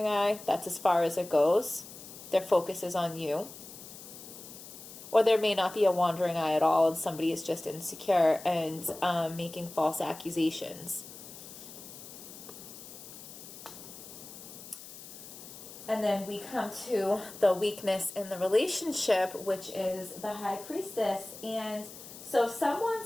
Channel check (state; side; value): noise; left; hiss, 15 dB below the sound